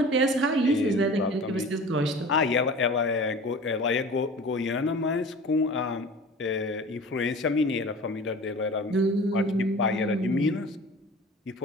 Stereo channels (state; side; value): normal; both; correlation 0.40